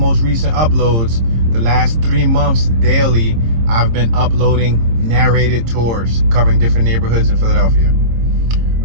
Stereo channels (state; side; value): late; left; 26 ms